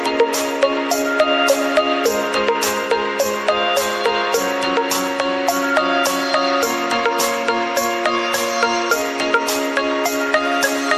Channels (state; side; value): identical; both; correlation 1.00